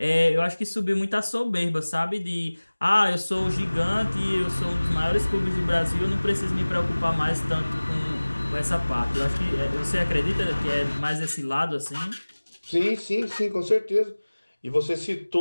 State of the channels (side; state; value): both; inverted; correlation -1.00